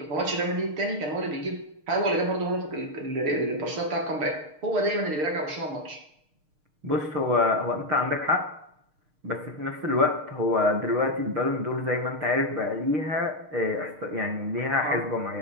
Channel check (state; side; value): late; left; 6.6 ms